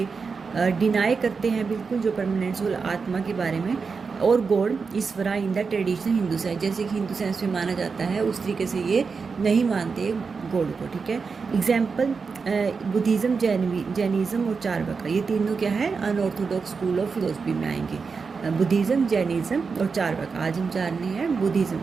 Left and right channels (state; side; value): quieter; left; 5.1 dB